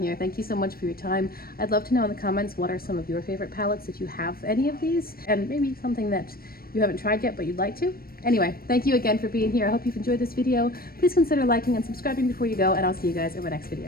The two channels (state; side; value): late; right; 0.44 ms